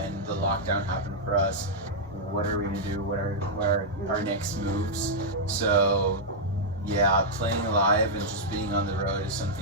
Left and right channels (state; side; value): normal; both; correlation -0.06